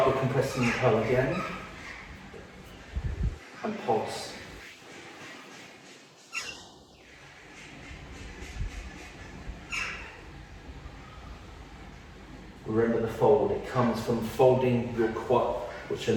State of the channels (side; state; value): both; identical; correlation 1.00